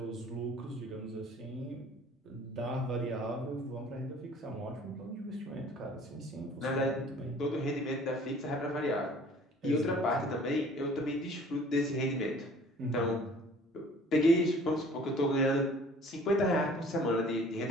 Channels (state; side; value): normal; both; correlation 0.51